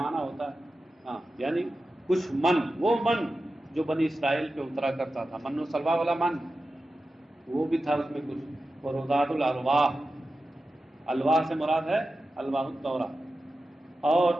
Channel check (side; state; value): both; normal; correlation 0.92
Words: ہوتا ہے، ہاں، یعنی کچھ من، وہ من جو بنی اسرائیل پہ اترا کرتا تھا، من و سلوا والا من، وہ بھی تھا اس میں کچھ۔ ورُدَادُ الْأَلْوَاحِ، الواح سے مراد ہے الواح التوراہ، اور